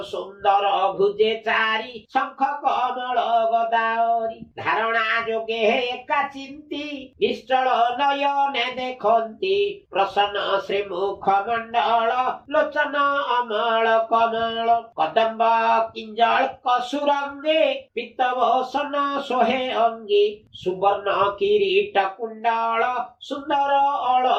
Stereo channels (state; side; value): identical; both; correlation 1.00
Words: सुंदर भुजे चारी शंख कमल गदावरी धारणा जोगे एका चिंती निश्चल नयने देखंती प्रसन्न श्रीमुख मंडल लोचन अमल कमल कदम्ब किंजल कसुरंगे पित्तवसन सोहे अंगी सुवर्ण किरीट कुंडल सुंदर